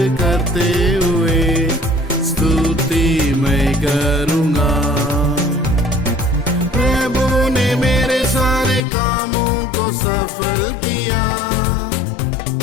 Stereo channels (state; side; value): drops out; right; at 8.8 s